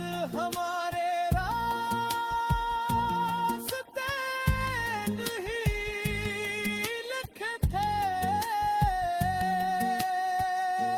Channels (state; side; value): identical; both; correlation 1.00